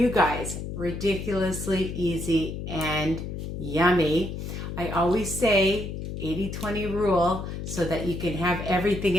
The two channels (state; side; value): noise; left; hum, 6 dB below the sound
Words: guys. Ridiculously easy and yummy. I always say 80-20 rule so that you can have everything